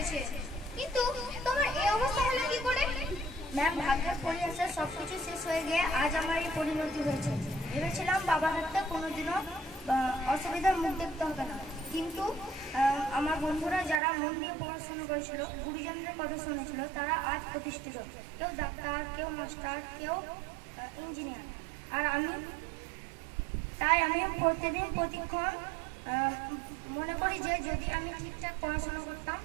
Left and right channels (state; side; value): drops out; left; at 14.0 s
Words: কিন্তু তোমার এই অবস্থা হলো কি করে? ম্যাম, ভাগ্যের পরিহাসে সবকিছু শেষ হয়ে গিয়ে আজ আমার এই পরিণতি হয়েছে। ভেবেছিলাম বাবার হাতে কোনোদিনও অসুবিধার মুখ দেখতে হবে না, কিন্তু আমার বন্ধুরা যারা মন দিয়ে পড়াশোনা করেছিল, গুরুজনদের কথা শুনেছিল, তারা আজ প্রতিষ্ঠিত। কেউ ডাক্তার, কেউ মাস্টার, কেউ ইঞ্জিনিয়ার। আর আমি প্রতিদিন প্রতিক্ষণ মনে করি যে যদি আমি ঠিকঠাক পড়াশোনা করতাম